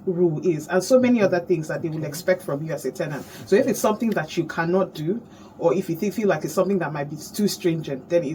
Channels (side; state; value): both; identical; correlation 1.00